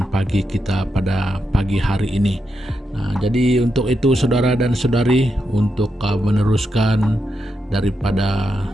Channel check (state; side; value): normal; both; correlation 0.85